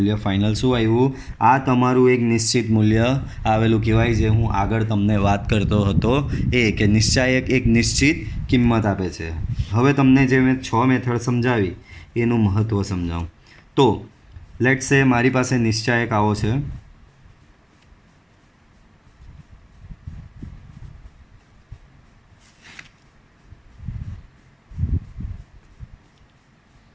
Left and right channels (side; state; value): both; identical; correlation 1.00